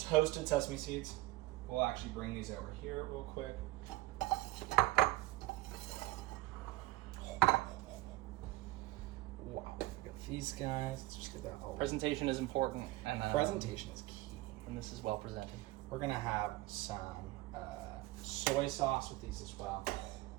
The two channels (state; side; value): quieter; left; 18.6 dB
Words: sesame seeds. We'll actually bring these over here real quick. Wow, we got these guys. Let's just get that all. Presentation is important, and Presentation is key. and this is well presented. We're gonna have some soy sauce with these as well.